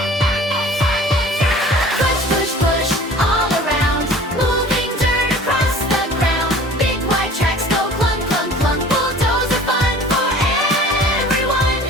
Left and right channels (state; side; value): normal; both; correlation 0.46